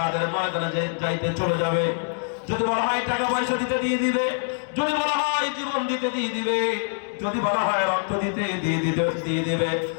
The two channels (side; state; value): right; silent; 61 dB below the other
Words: ময়দানে যাইতে চলে যাবে, যদি বলা হয় টাকা পয়সা দিতে দিয়ে দিবে, যদি বলা হয় জীবন দিতে দিয়ে দিবে, যদি বলা হয় রক্ত দিতে দিয়ে দিবে,